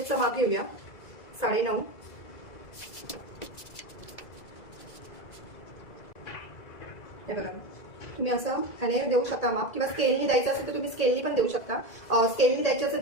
माप घेऊया. 9.5. हे बघा, तुम्ही असं ह्याने देऊ शकता माप, किंवा स्केलनी द्यायचं असेल तर तुम्ही स्केलनी पण देऊ शकता. स्केलनी द्यायचं असेल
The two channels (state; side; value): late; right; 2.0 ms